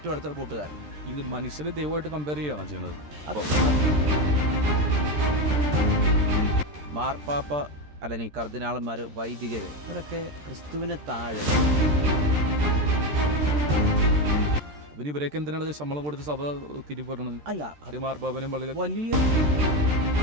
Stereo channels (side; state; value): left; late; 13 ms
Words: അടുത്ത കൂട്ടുകാരൻ. ഇത് മനുഷ്യനെ ദൈവമായിട്ട് കമ്പയർ ചെയ്യുകയാണ് ചെയ്യണത്. മാർപ്പാപ്പ അല്ലെങ്കിൽ കർദിനാളന്മാർ, വൈദികർ, ഇവരൊക്കെ ക്രിസ്തുവിന് താഴെ. പിന്നെ ഇവരൊക്കെ എന്തിനാണ് ശമ്പളം കൊടുത്ത് സഭ തിരിപ്പറയണത്? അല്ല, അത് മാർപ്പാപ്പനും പള്ളി വലിയ